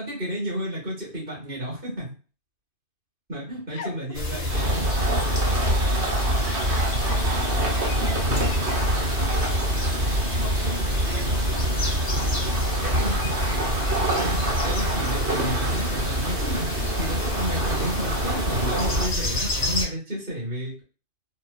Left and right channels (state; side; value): late; left; 2.5 ms